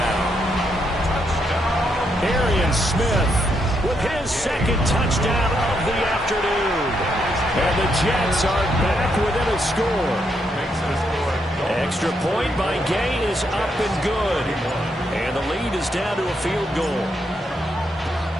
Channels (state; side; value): normal; both; correlation 0.78